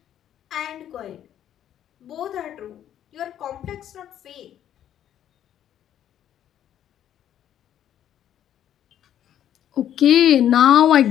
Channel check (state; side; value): quieter; right; 10.7 dB